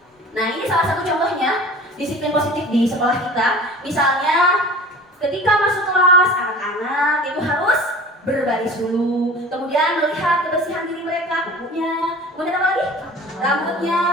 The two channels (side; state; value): both; normal; correlation 0.41